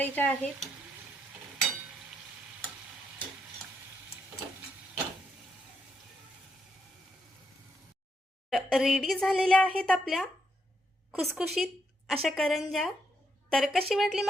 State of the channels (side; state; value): both; normal; correlation 0.78